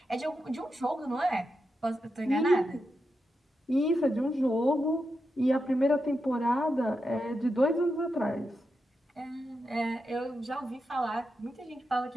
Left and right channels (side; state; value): both; normal; correlation 0.87